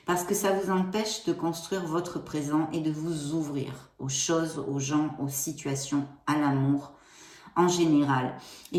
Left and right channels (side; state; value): both; identical; correlation 1.00